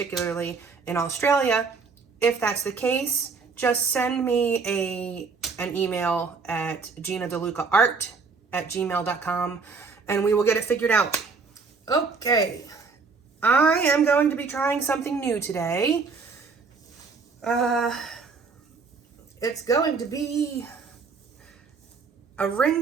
in Australia. If that's the case, just send me an email at ginadelucaart@gmail.com and we will get it figured out. Okay, I am going to be trying something new today. It's going to be a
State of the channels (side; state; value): left; quieter; 4.7 dB